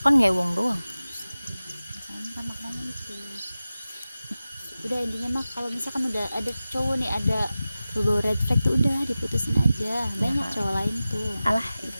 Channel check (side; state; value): both; inverted; correlation -0.95